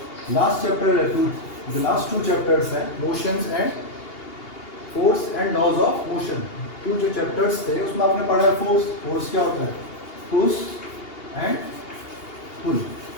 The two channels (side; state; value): right; late; 2.8 ms